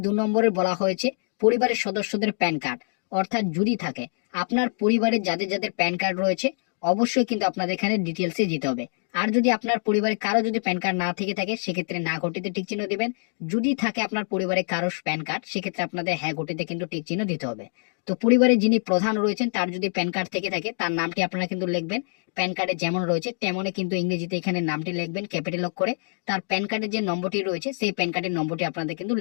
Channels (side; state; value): right; silent; 55 dB below the other